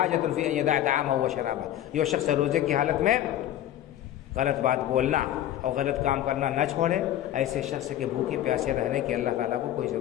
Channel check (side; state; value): right; quieter; 12.3 dB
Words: في ان يدع طعامه وشرابه۔ جو شخص روزے کی حالت میں غلط بات بولنا اور غلط کام کرنا نہ چھوڑے، ایسے شخص کے بھوکے پیاسے رہنے کی اللہ تعالیٰ کو کوئی